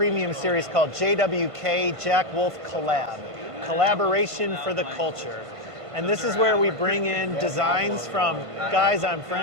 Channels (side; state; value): left; late; 1.5 ms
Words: series called JWK Jack Wolf Collab. Collaboration for the culture. And this is where we bring in designs from guys I'm